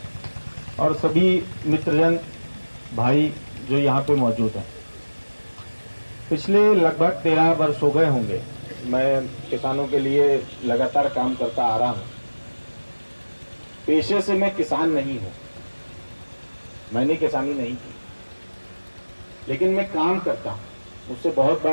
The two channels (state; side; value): inverted; both; correlation -1.00